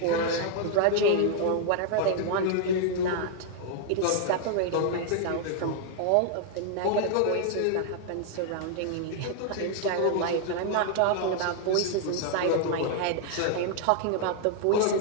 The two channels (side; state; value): both; different; correlation 0.00